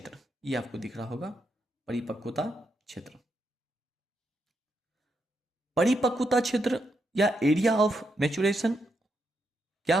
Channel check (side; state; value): both; normal; correlation 0.82